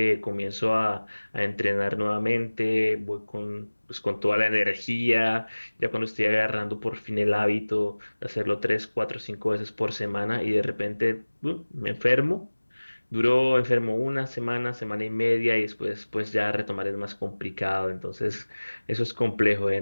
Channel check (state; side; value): inverted; both; correlation -1.00